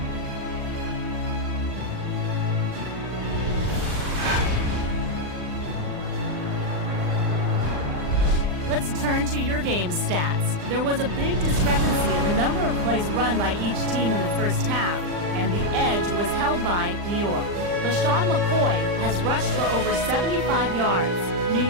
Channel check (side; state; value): left; late; 39 ms